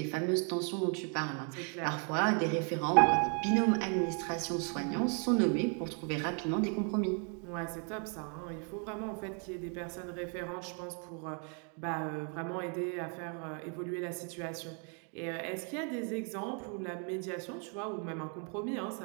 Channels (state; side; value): quieter; left; 39.6 dB